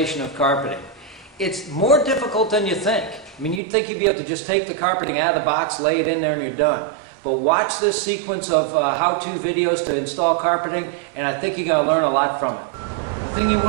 of carpeting. It's more difficult than you think. I mean, you'd think you'd be able to just take the carpeting out of the box, lay it in there, and you're done. But watch this sequence of how-to videos to install carpeting, and I think you're going to learn a lot from it. The thing you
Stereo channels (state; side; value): drops out; left; at 3.6 s